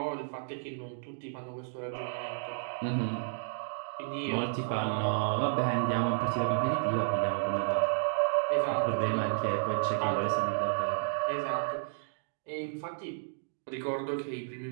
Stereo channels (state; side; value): silent; left; digital silence